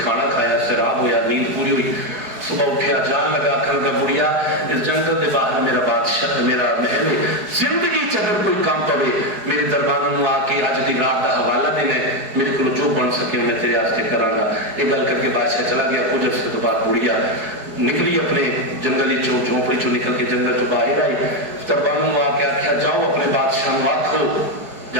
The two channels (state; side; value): late; left; 4.8 ms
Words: کھانا کھایا, سیراب ہویا, نیند پوری ہوئی. صبح اٹھیا, جان لگا آخر کا بڑھیا اس جنگل کے باہر میرا بادشاہ میرا محل ہے. زندگی چگر کوئی کام پوے میرے دربار میں آ کے اج دی رات کا حوالہ دینا ہے, میرے کو جو بن سکے میں تیرے واسطے کراں گا. یہ گل کر کے بادشاہ چلا گیا. کچھ عرصے تو بعد بڑھیا نکلی اپنے جنگلی جھونپڑی چو نکل کے جنگل چ باہر آئی. دربار میں آ کے آخیا جاؤ اپنے بادشاہ کو آکھو,